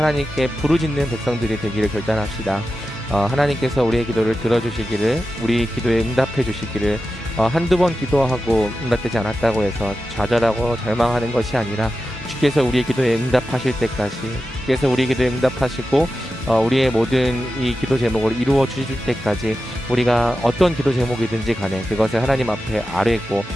부르짖는 백성들이 되기를 결단합시다. 하나님께서 우리의 기도를 들어주시기를, 우리 기도에 응답해 주시기를, 한두 번 기도하고 응답되지 않았다고 해서 좌절하고 절망하는 것이 아니라 주께서 우리의 기도에 응답하실 때까지, 주께서 우리의 기도에 응답하시고 우리의 모든 이 기도 제목을 이루어 주실 때까지 우리가 어떤 기도 제목이든지 간에 그것을 하나님 앞에 아뢰고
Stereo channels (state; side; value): normal; both; correlation 0.92